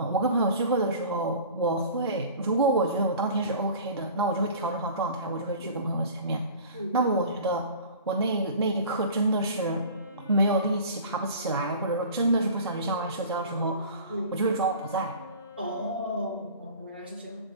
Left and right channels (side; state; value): both; inverted; correlation -0.41